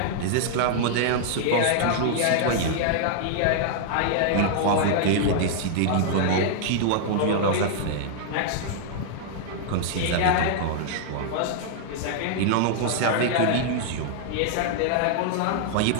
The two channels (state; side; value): different; both; correlation -0.01